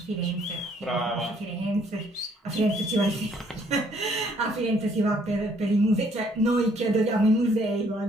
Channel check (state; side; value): normal; both; correlation 0.64